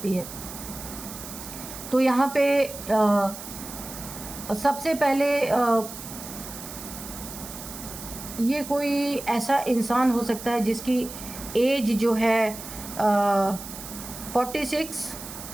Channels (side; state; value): right; noise; hiss, 12 dB below the sound